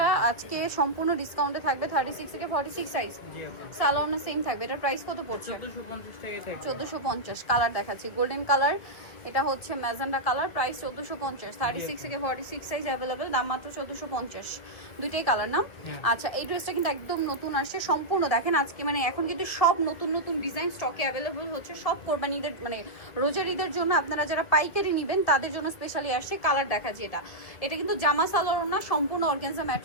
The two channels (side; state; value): right; late; 2.3 ms